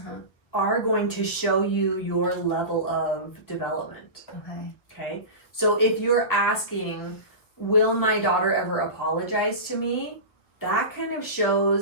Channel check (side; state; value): right; late; 1.4 ms